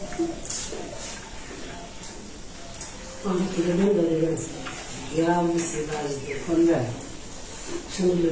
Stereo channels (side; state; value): both; identical; correlation 1.00